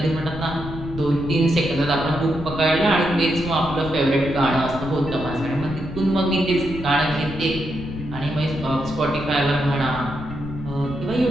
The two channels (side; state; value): left; noise; rumble, 10 dB below the sound